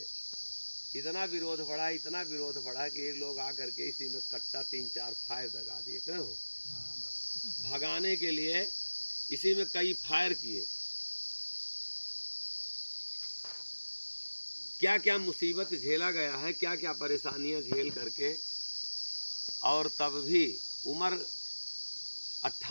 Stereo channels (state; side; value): inverted; both; correlation -1.00